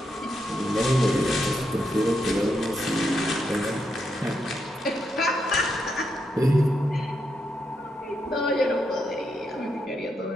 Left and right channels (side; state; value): both; normal; correlation 0.82